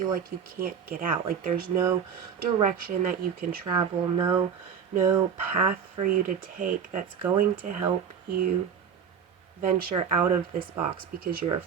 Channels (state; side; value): quieter; left; 7.3 dB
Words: like you can't get out. Like there's no direction that you can travel, no path for you to take that's going to help you venture out of this box, because you're